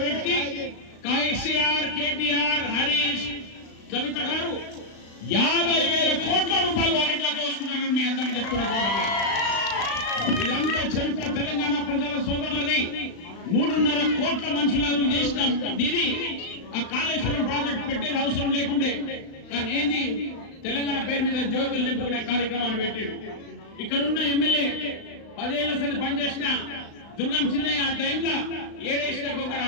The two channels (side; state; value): right; late; 35 ms